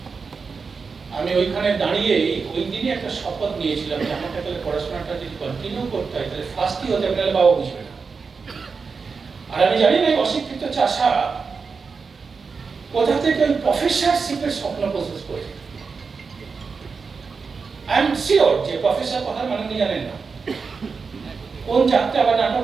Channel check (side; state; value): left; quieter; 5.0 dB